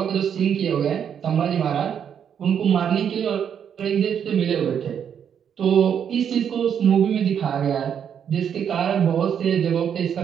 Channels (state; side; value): quieter; left; 8.3 dB